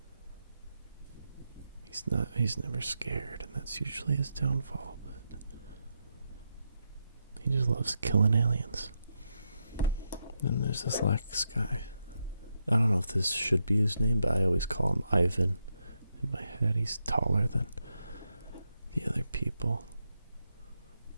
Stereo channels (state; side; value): inverted; both; correlation -0.84